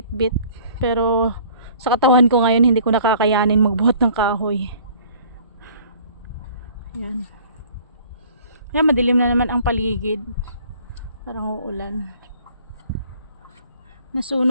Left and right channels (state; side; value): inverted; both; correlation -0.52